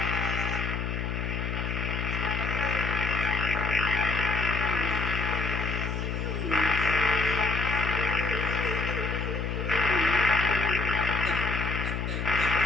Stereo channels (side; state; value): left; noise; hum, 2 dB below the sound